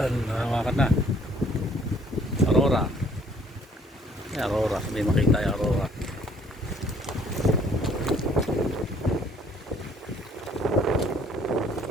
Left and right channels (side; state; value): both; normal; correlation 0.60